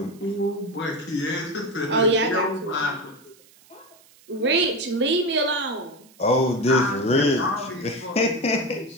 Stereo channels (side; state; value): right; noise; hiss, 27 dB below the sound